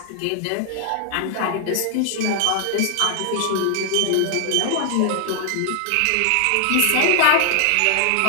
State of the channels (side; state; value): both; different; correlation 0.00